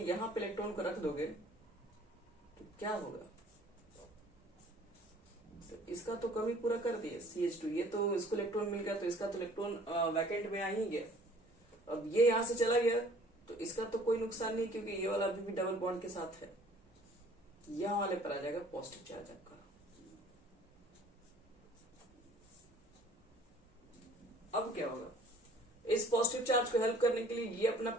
यहां पे इलेक्ट्रॉन को रख दोगे तो क्या होगा, तो इसका तो कमी पूरा कर दिए CH2, ये तो इसको इलेक्ट्रॉन मिल गया, तो इसका तो इलेक्ट्रॉन वैकेंट में आ ही गया। अब ये यहां से चला गया तो इसका तो कोई नुकसान नहीं, क्योंकि ये वाला अभी भी डबल बॉन्ड के साथ है, यहां वाले पर आ जाएगा पॉजिटिव चार्ज आपका। अब क्या होगा, इस पॉजिटिव चार्ज को हेल्प करने के लिए ये अपना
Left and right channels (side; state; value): both; normal; correlation 0.53